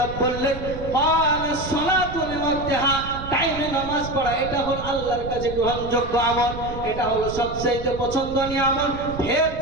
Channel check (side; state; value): right; noise; rumble, 10 dB below the sound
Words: বললেন, ক্বালাস সালাতু লিওয়াক্তিহা, টাইমে নামাজ পড়া, এটা হলো আল্লাহর কাছে গ্রহণযোগ্য আমল, এটা হলো সবচেয়ে পছন্দনীয় আমল। ফের